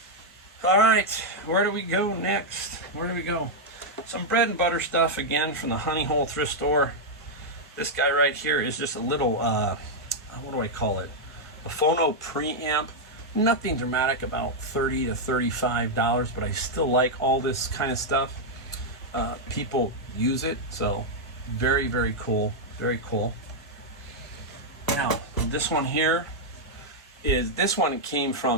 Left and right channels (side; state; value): both; normal; correlation -0.03